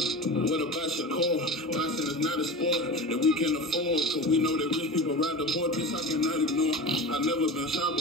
what about Shakur? Boxing is not a sport that we can afford. Cause we know that rich people ride the board. This I cannot ignore. I've never been shot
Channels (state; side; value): normal; both; correlation 0.31